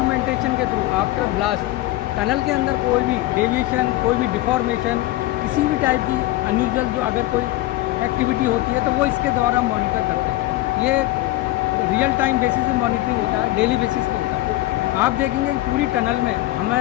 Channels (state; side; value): quieter; right; 16.9 dB